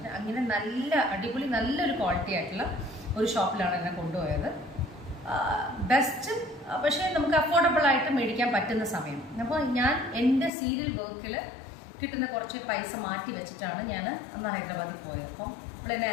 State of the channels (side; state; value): right; drops out; at 10.5 s